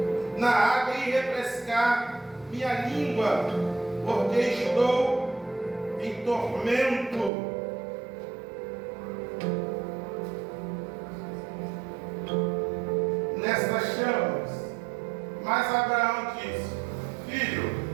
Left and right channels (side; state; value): left; drops out; at 7.3 s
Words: na água e refrescar minha língua, porque estou em tormento. Nestas chamas. Mas Abraão disse: Filho,